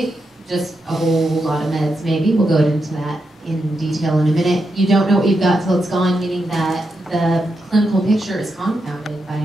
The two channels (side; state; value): both; normal; correlation 0.85